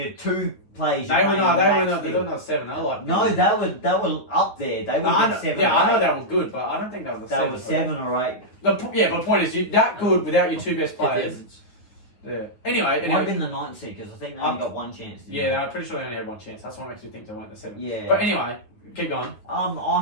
2 players. They were not 7. They were like. No, they were up there. They were 7 Yeah, or I know 8. they were good, but I don't think they were 7. They were 7 or 8. But the point is, you're that good without your 2 best players. Yeah. Anyway. It might have been the 9th seed, because I think they only got 1 chance. Yeah, I'm pretty sure they only had 1 chance. That's what makes me think they went to 7. Yeah. But anyway, keep going. I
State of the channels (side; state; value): right; late; 9.3 ms